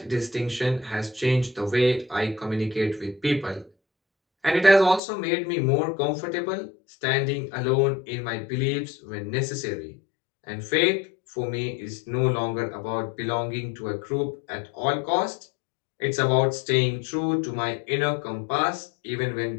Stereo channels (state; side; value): drops out; right; at 5.0 s